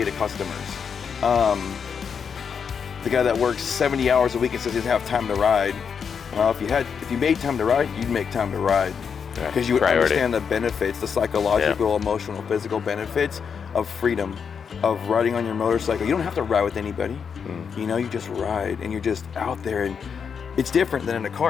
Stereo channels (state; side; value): quieter; right; 6.6 dB